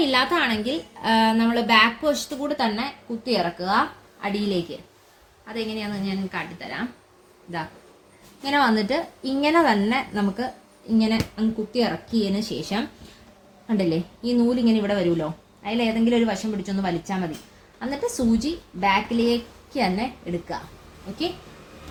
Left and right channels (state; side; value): identical; both; correlation 1.00